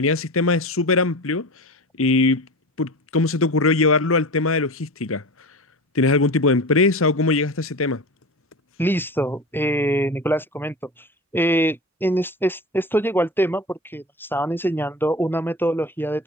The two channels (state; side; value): normal; both; correlation 0.30